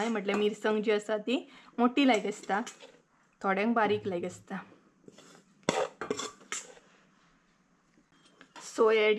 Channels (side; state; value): both; identical; correlation 1.00